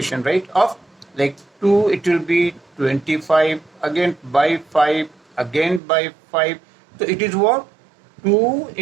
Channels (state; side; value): drops out; left; at 5.8 s